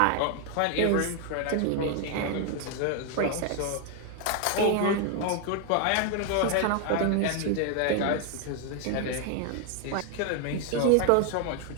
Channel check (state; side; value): different; both; correlation 0.00